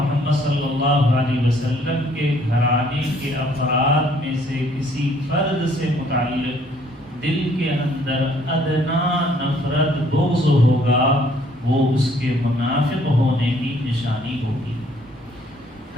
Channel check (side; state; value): both; normal; correlation 0.62